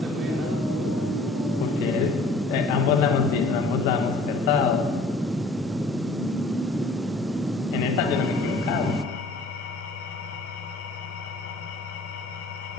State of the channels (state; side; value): quieter; right; 3.0 dB